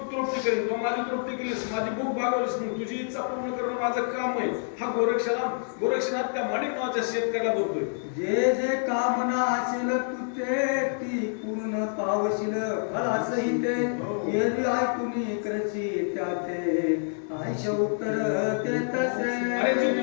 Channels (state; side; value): silent; right; digital silence